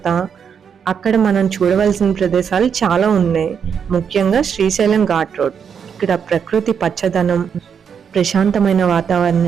అక్కడ మనం చూడవలసిన ప్రదేశాలు చాలా ఉన్నాయి. ముఖ్యంగా శ్రీశైలం ఘాట్ రోడ్. ఇక్కడ ప్రకృతి పచ్చదనం, ప్రశాంతమైన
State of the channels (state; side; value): quieter; left; 7.2 dB